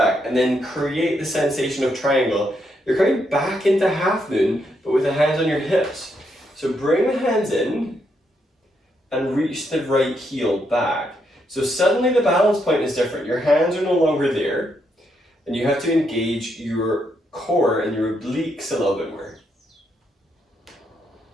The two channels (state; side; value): normal; both; correlation 0.78